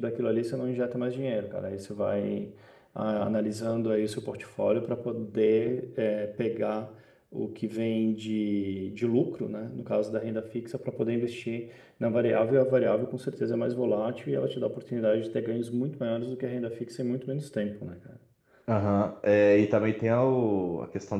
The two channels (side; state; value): both; identical; correlation 1.00